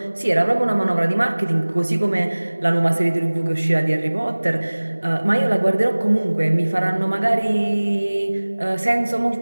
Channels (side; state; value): both; inverted; correlation -1.00